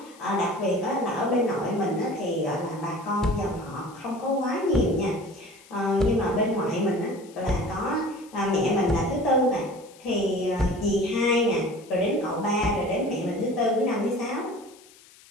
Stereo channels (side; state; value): left; noise; hiss, 25 dB below the sound